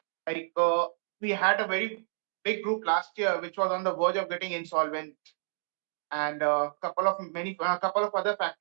Like we had a very big group last year which was on the verge of getting insolvent, and a couple of other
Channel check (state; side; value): silent; left; digital silence